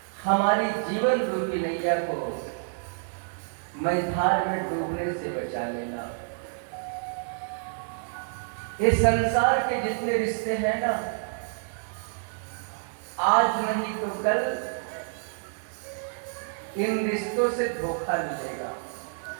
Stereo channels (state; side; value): silent; left; digital silence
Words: हमारी जीवन रूपी नैया को मझधार में डूबने से बचा लेना। ये संसार के जितने रिश्ते हैं ना, आज नहीं तो कल इन रिश्तों से धोखा मिलेगा।